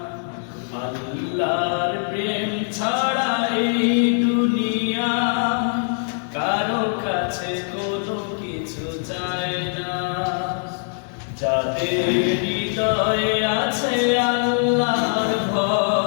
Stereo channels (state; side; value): silent; right; 58 dB below the other